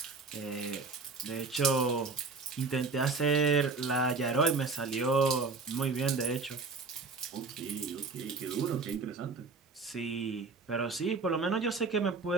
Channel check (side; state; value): left; quieter; 4.2 dB